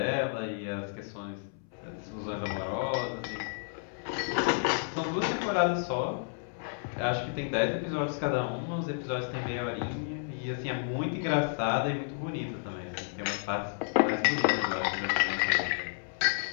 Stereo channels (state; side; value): silent; right; 57 dB below the other